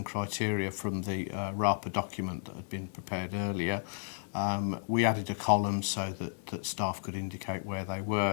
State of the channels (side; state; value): right; silent; 56 dB below the other